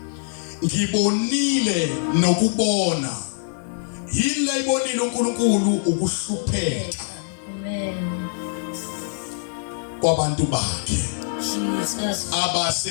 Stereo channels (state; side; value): silent; right; 63 dB below the other